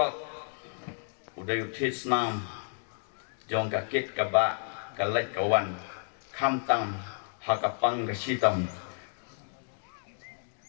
uday utis nam jong kakit kaba kalai kawan kamtam hakapang kasitam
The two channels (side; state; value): right; silent; digital silence